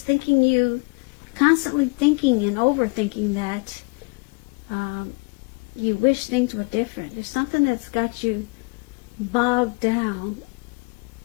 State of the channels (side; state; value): right; quieter; 30.2 dB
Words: constantly thinking and overthinking that you wish things were different. There's something that's got you bogged down,